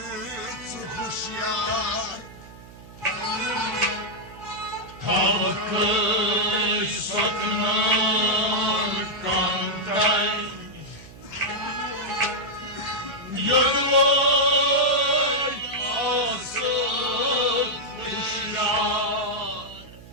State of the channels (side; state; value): right; noise; hum, 19 dB below the sound